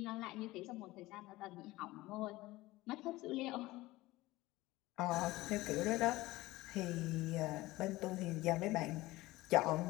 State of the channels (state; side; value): quieter; right; 18.8 dB